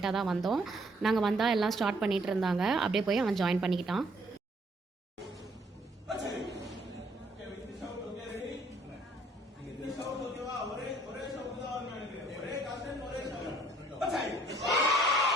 தான் வந்தோம். நாங்கள் வந்தால் எல்லாம் ஸ்டார்ட் பண்ணிகிட்டு இருந்தாங்க. அப்படியே போய் அவன் join பண்ணிக்கிட்டான்.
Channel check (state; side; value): normal; both; correlation 0.63